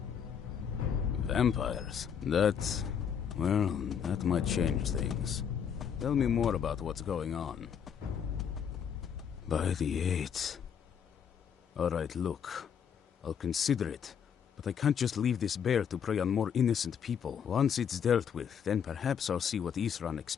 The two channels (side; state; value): right; quieter; 7.7 dB